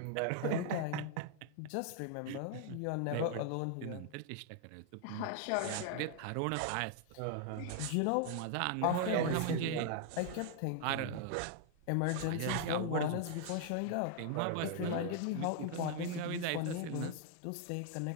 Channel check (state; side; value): different; both; correlation 0.00